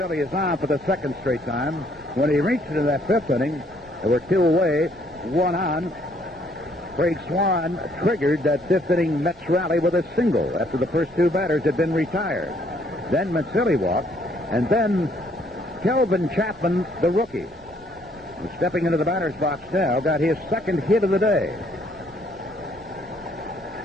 is on for the second straight time. When he reached into that fifth inning, there were two away, one on. Craig Swan triggered that fifth inning Mets rally with a single after the first two batters had been retired. Then Mazzilli walked, and then Kelvin Chapman, the rookie, who's stepping into the batter's box now, got his second hit of the day.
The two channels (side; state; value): both; normal; correlation 0.66